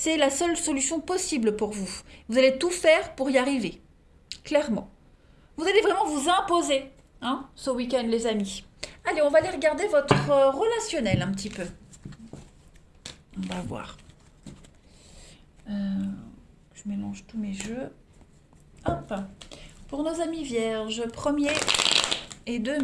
la seule solution possible pour vous. Vous allez tout faire pour y arriver. Clairement. Vous allez vraiment vous imposer ce week-end, les amis. Allez, on va aller regarder votre relationnel un petit peu. On va voir. Je mélange tous mes jeux. Hop. Pour nos amis vierges, 1er et 2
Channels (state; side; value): identical; both; correlation 1.00